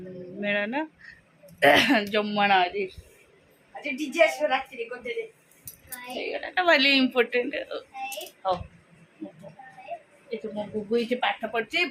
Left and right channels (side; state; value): both; identical; correlation 1.00